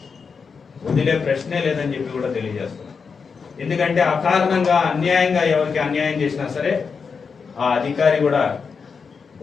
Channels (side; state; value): right; quieter; 5.5 dB